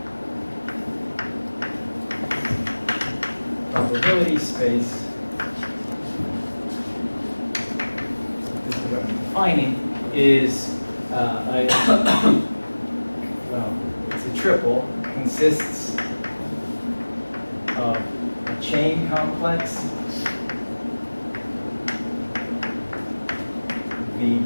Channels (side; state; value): both; inverted; correlation -1.00